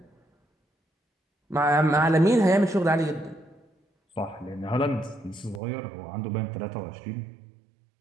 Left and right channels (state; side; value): drops out; left; at 5.6 s